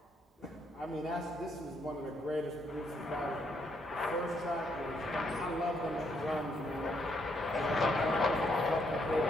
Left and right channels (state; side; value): normal; both; correlation 0.74